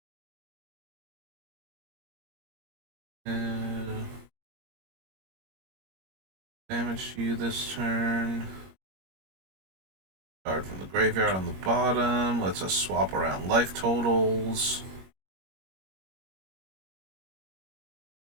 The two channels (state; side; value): late; left; 21 ms